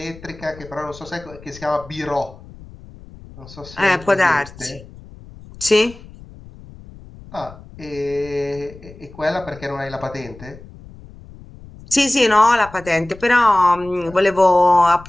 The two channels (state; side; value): noise; left; rumble, 19 dB below the sound